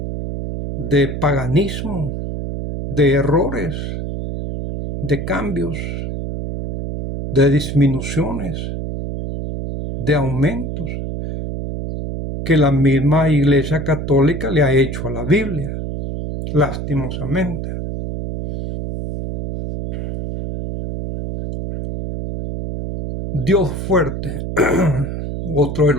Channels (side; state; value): right; noise; hum, 5 dB below the sound